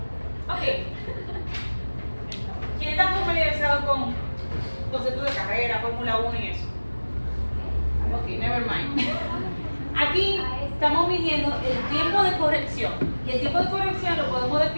Ok. ¿Quién está familiarizado con conceptos de carrera, Fórmula 1 y eso? Ok, never mind. Aquí estamos midiendo el tiempo de corrección. Y el tiempo de corrección lo podemos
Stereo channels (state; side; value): inverted; both; correlation -1.00